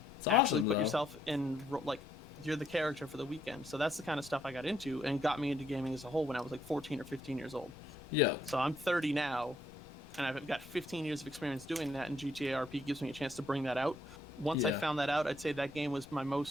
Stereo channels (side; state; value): both; normal; correlation 0.72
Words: it's actually awesome, put yourself in, like, you're the character for the weekend. So that's the kind of stuff I got into and got me into gaming as a whole when I was like 14 or 15 years old. Yeah. So I'm 30 now, and I've got 15 years of experience doing that, and GTA RP gives me a chance to bring that out. Once I found that out, I'd say that game was my